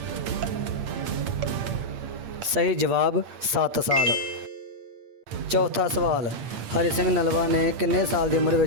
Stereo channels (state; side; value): late; left; 8.6 ms